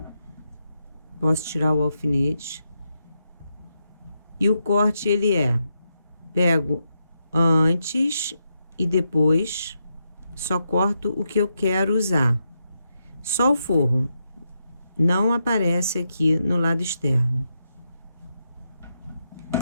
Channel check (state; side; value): inverted; both; correlation -0.84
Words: posso tirar o alfinete. E o corte, ele pego antes e depois, só corto o que eu quero usar. Só o forro, não aparece aqui no lado externo.